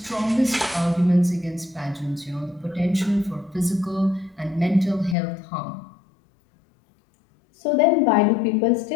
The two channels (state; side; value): drops out; right; at 5.2 s